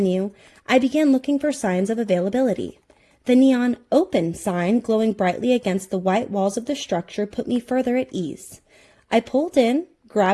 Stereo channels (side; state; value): both; identical; correlation 1.00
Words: I began looking for signs of availability. The neon "Open" sign glowing brightly against the white walls of the structure put me further at ease. I pulled in,